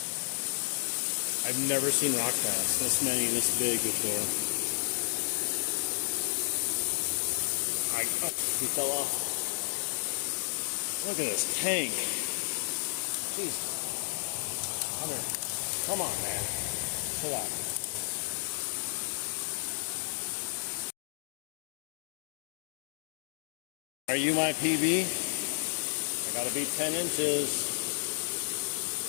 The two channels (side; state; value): right; silent; digital silence